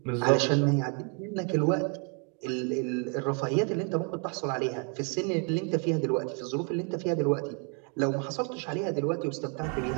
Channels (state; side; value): quieter; left; 38.6 dB